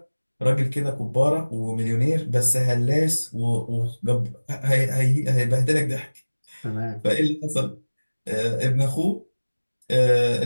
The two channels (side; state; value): both; inverted; correlation -1.00